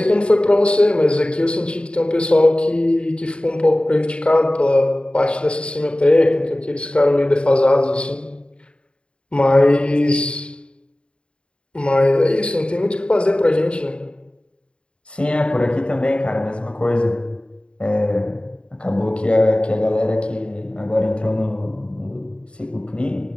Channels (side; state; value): right; late; 0.055 ms